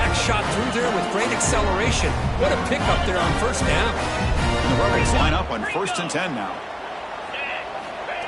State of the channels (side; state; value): both; identical; correlation 1.00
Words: shot through there with great acceleration. What a pickup there on first down. And the Rebels line up on 1st and 10 now.